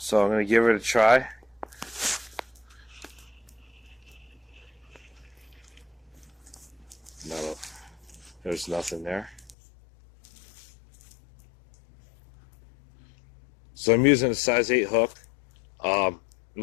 I'm going to give it a try. No, there's nothing there. So I'm using a size 8 hook. I'm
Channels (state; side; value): drops out; right; at 9.6 s